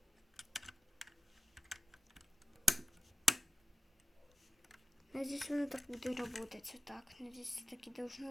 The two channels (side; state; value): both; normal; correlation 0.93